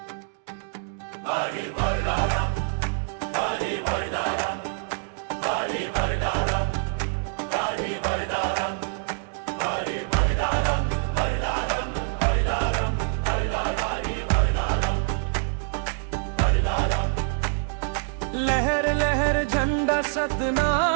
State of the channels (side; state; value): left; silent; digital silence